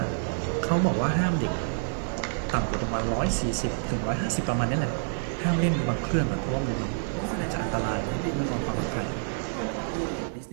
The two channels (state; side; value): silent; left; digital silence